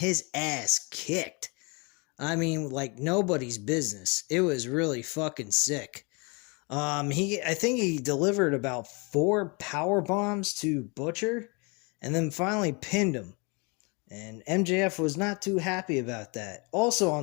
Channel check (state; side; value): quieter; right; 30.8 dB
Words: ass kicked. I mean, like nobody's business. It was really fucking sick. I think he delivered about 4 power bombs to Butcher, and then finally pinned him. And MJF was not too happy about that. Also,